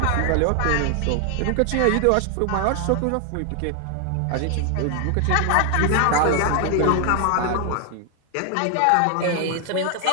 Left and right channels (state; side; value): different; both; correlation 0.00